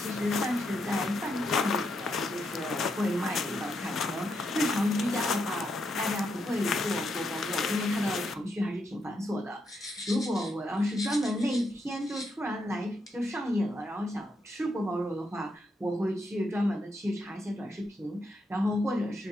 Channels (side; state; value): both; normal; correlation 0.80